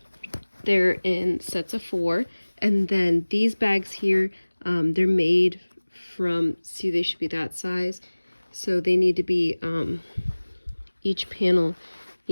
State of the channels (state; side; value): inverted; both; correlation -1.00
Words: They're in sets of 4. And then these bags here, they're made from, see, they should be that size. So they need to be, each panel